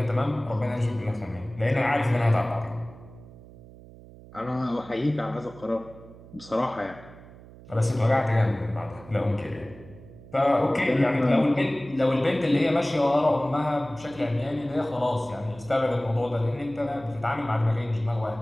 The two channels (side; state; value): right; noise; hum, 19 dB below the sound